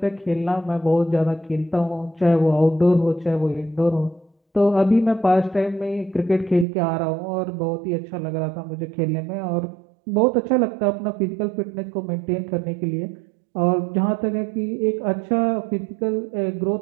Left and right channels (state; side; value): drops out; left; at 6.7 s